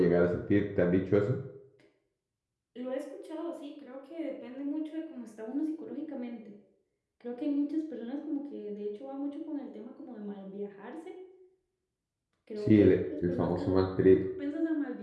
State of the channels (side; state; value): both; identical; correlation 1.00